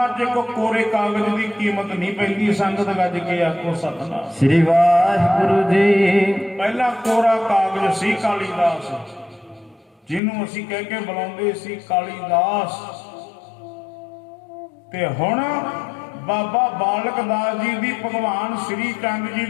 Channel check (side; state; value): right; drops out; at 10.2 s